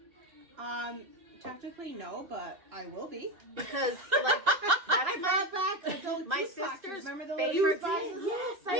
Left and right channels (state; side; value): late; left; 2.7 ms